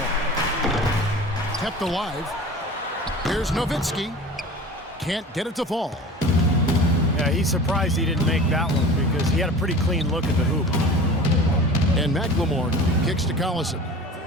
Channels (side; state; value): both; normal; correlation 0.39